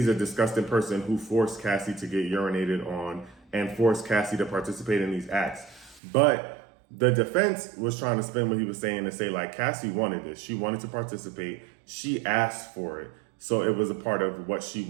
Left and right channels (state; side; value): drops out; left; at 6.0 s